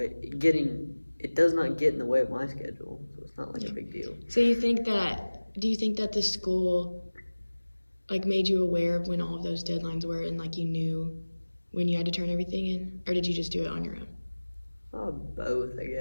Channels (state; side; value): inverted; both; correlation -1.00